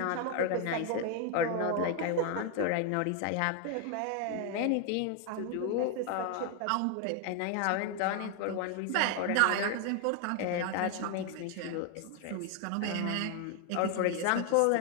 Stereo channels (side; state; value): both; different; correlation 0.01